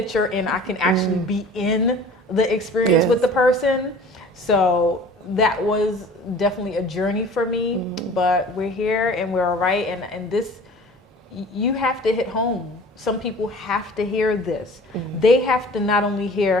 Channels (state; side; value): normal; both; correlation 0.45